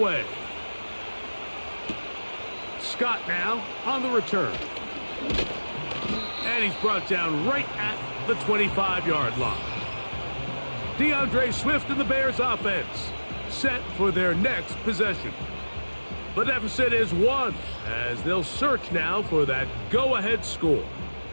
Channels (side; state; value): both; inverted; correlation -1.00